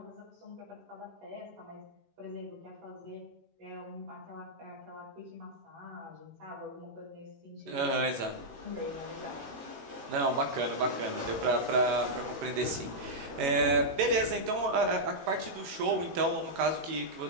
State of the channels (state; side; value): late; left; 18 ms